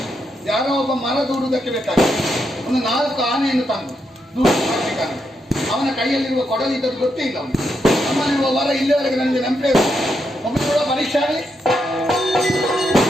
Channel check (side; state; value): both; normal; correlation 0.81